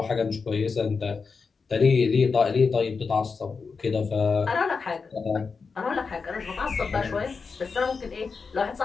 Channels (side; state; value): right; quieter; 5.0 dB